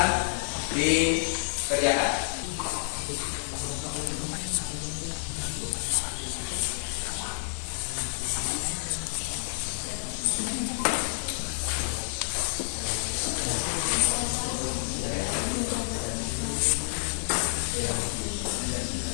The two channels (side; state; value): right; silent; digital silence